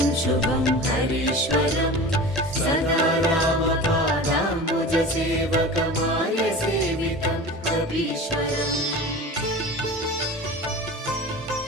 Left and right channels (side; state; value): both; normal; correlation 0.34